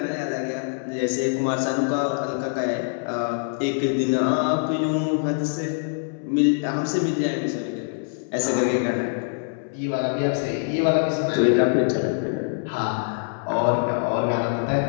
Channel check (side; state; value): right; silent; 63 dB below the other